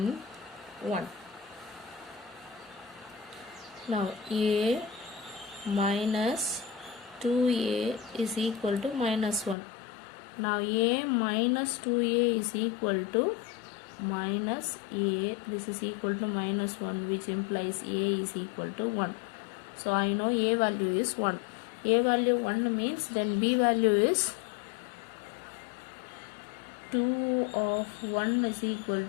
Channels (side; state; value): right; drops out; at 9.6 s